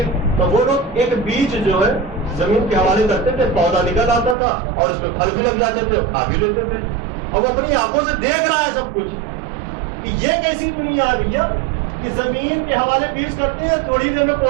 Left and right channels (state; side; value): drops out; left; at 4.4 s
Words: تو وہ لوگ ایک بیج جو ہے زمین کے حوالے کرتے تھے, پودا نکل آتا تھا اور اس میں پھل بھی لگ جاتے تھے, کھا بھی لیتے تھے. اور وہ اپنی آنکھوں سے دیکھ رہا ہے سب کچھ کہ یہ کیسی دنیا ہے بھیا کہ زمین کے حوالے بیج کرتے ہیں, تھوڑی دیر میں